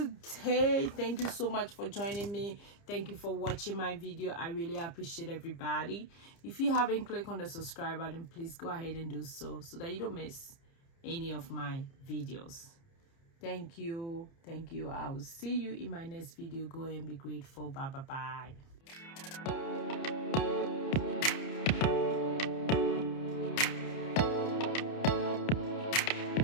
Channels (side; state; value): right; late; 30 ms